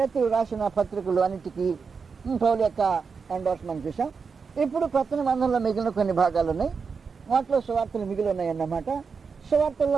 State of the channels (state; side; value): quieter; left; 5.4 dB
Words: రాసిన పత్రికలు అన్నిటికీ పౌలు యొక్క ఎండార్స్మెంట్ చూసాం. ఇప్పుడు కొత్త నిబంధనలో మిగిలిన కొన్ని భాగాలు ఉన్నాయి. వాటిలో సువార్తలు మిగిలి ఉన్నాయి అన్నమాట.